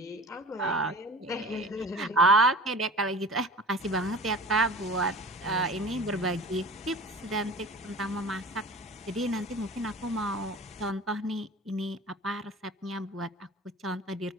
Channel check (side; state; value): both; normal; correlation 0.39